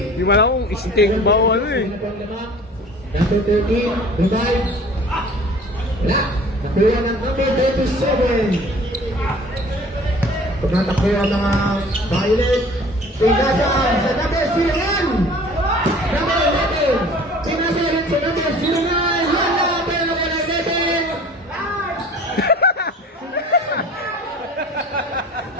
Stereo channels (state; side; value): normal; both; correlation 0.47